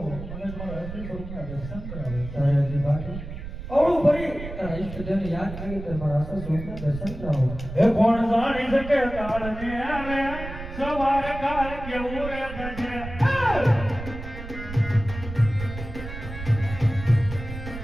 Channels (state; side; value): noise; right; rumble, 10 dB below the sound